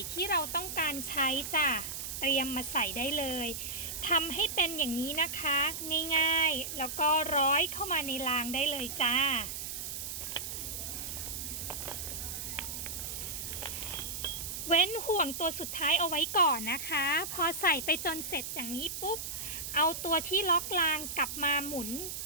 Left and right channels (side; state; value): right; noise; hiss, 6 dB below the sound